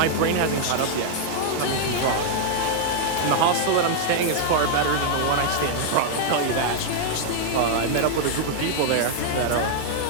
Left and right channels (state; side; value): different; both; correlation -0.01